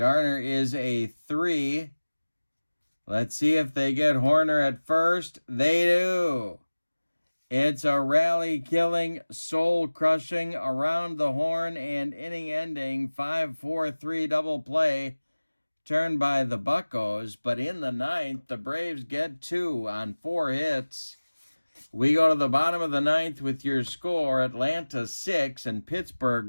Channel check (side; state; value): both; inverted; correlation -1.00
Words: is a 3. Let's see if they get Horner at first. They do. It's a rally-killing, soul-crushing, around the horn and inning-ending 5-4-3 double play turned by the Buccos. But in the 9th, the Braves get 2 on 4 hits. We go to the bottom of the 9th with your score: Atlanta 6 and